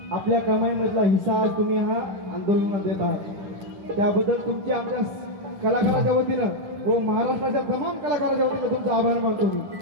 आपल्या कमाईमधला हिस्सा तुम्ही हा आंदोलनात देत आहात त्याबद्दल तुमचे आमच्या कलाकाराच्या वतीनं व महाराष्ट्राच्या तमाम कलाकाराच्या वतीनं तुमचे आभार मानतो मी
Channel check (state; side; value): late; left; 11 ms